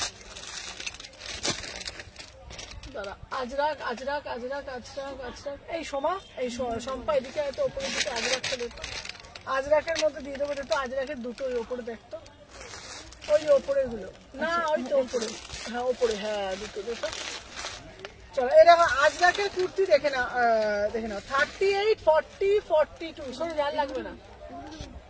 দাঁড়া, আজরাক আজরাক আজরাক আজরাক আজরাক, এই সোমা, এই শম্পা এদিকে হয়তো ওপরের দিকে আজরাকটা দেখতো, আজরাকের মধ্যে দিয়ে দেবো। দেখতো আজরাকের দুটো ওই ওপরে দেখতো, ওই ওপরের গুলো না, ওই তো ওপরে। হ্যাঁ ওপরে, হ্যাঁ দুটো দুটো। চলো এরকম আজরাকের কুর্তি দেখে না, 38, 40, 42। সরে যার লাগবে না,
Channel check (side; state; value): both; identical; correlation 1.00